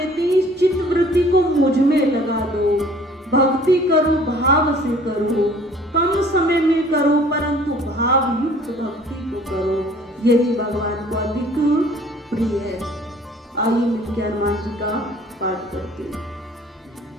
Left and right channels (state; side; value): normal; both; correlation 0.53